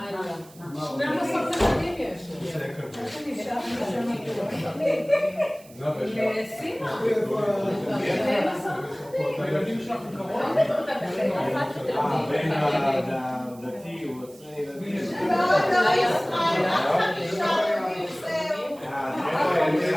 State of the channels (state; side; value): noise; right; hiss, 24 dB below the sound